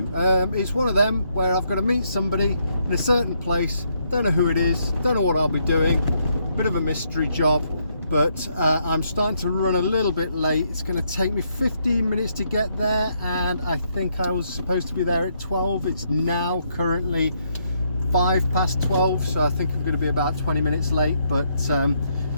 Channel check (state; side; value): inverted; both; correlation -0.75